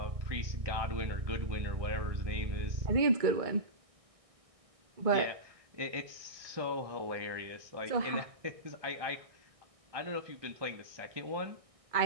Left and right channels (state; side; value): late; left; 1.6 ms